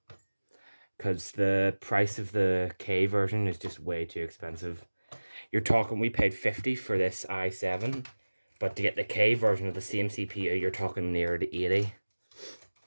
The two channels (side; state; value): both; inverted; correlation -1.00